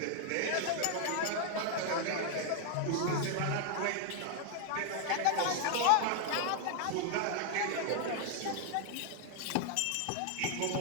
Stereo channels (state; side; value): different; both; correlation 0.00